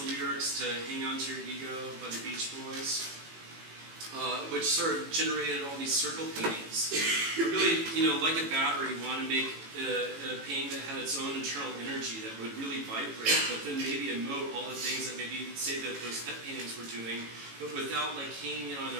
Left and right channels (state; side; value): late; left; 18 ms